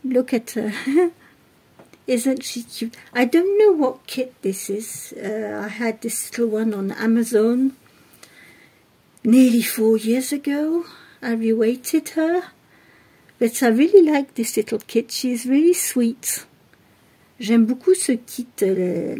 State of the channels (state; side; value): identical; both; correlation 1.00